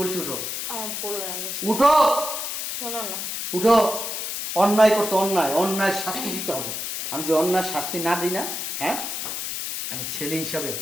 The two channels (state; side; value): noise; left; hiss, 4 dB below the sound